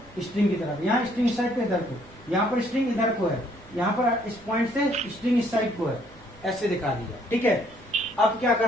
स्ट्रिंग की तरफ, यहाँ स्ट्रिंग इस साइड को इधर को, यहाँ पर स्ट्रिंग इधर को है, यहाँ पर इस पॉइंट से स्ट्रिंग इस साइड को है, ऐसे दिखा दिया, ठीक है। अब क्या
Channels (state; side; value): normal; both; correlation 0.65